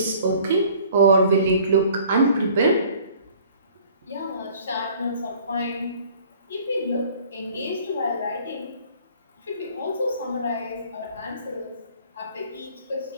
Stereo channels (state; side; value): inverted; both; correlation -0.53